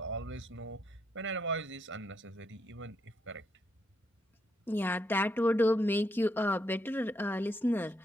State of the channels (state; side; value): normal; both; correlation 0.77